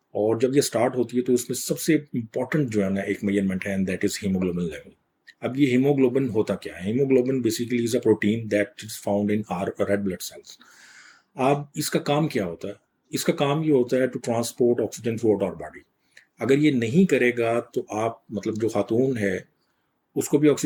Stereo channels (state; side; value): identical; both; correlation 1.00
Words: اور جب یہ سٹارٹ ہوتی ہے تو اس میں سب سے امپورٹنٹ جو ہے نا ایک میجرمنٹ ہے، دیٹ از ہیموگلوبن لیول. اب یہ ہیموگلوبن ہوتا کیا ہے؟ Haemoglobin basically is a protein that is found in our red blood cells. اب اس کا کام کیا ہوتا ہے؟ اس کا کام یہ ہوتا ہے to transport oxygen throughout our body. اگر یہ نہیں کرے گا تو آپ جو خاتون ہے اس کو بھی